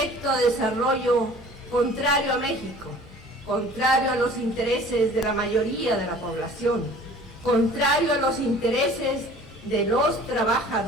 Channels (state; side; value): normal; both; correlation 0.48